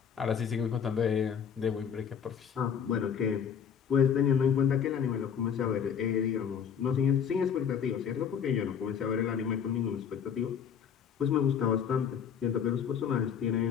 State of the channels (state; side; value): quieter; right; 7.6 dB